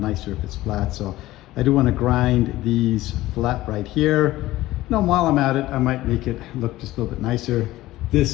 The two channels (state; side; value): quieter; right; 16.6 dB